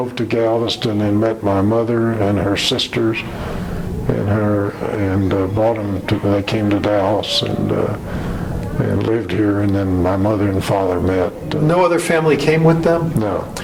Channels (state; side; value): identical; both; correlation 1.00